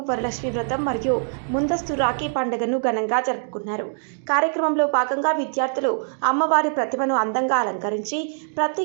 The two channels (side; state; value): left; silent; digital silence